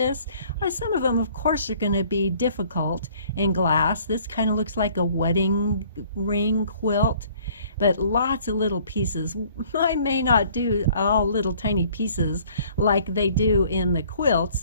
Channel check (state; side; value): inverted; both; correlation -0.56